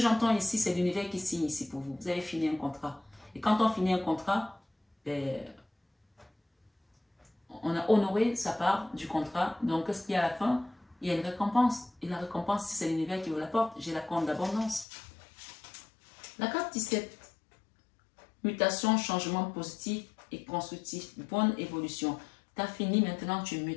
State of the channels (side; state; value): right; drops out; at 14.9 s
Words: ici, c'est l'univers qui signe ici pour vous. Vous avez fini un contrat. Et quand on finit un contrat, on a honoré sa part du contrat. Donc, qu'est-ce qu'il y a à la fin? Il y a une récompense. Et la récompense, c'est l'univers qui vous l'apporte. J'ai la corne d'abondance. La carte 17. Mutation, changement positif et constructif. Bonne évolution. Tu as fini, maintenant tu